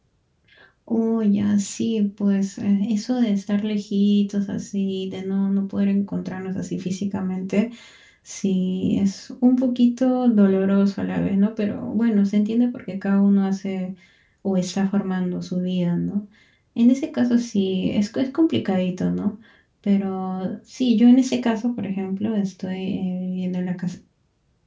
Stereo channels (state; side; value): identical; both; correlation 1.00